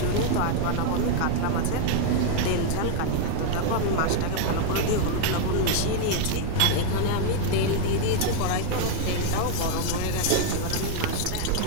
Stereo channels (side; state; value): both; different; correlation 0.00